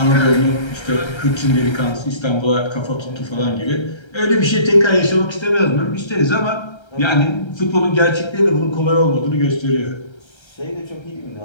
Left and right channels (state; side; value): late; right; 1.3 ms